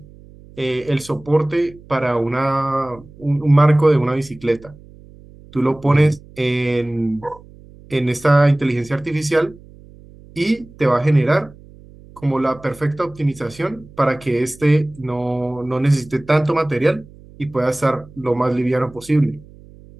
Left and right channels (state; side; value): noise; right; hum, 22 dB below the sound